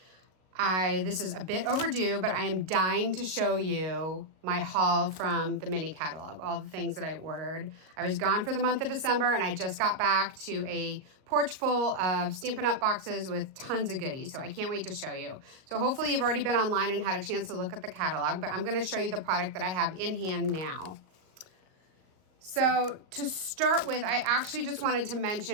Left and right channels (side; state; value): left; late; 38 ms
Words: This is a bit overdue, but I am dying to show you my haul from the mini catalog, all the things that I ordered. I was gone for the month of December and I just got back to a porch full of Stampin' Up! Boxes with tons of goodies, so I can't wait to show you. So hopefully you've already been online and had a chance to look at the catalog, but I'm gonna show you the product that I have in hand now. So to start with, I actually just wanted to